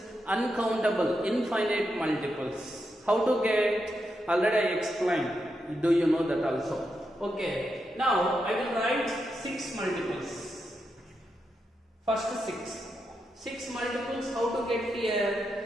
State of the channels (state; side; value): normal; both; correlation 0.85